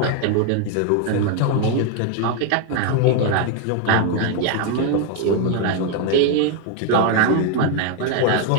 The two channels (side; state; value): both; different; correlation 0.01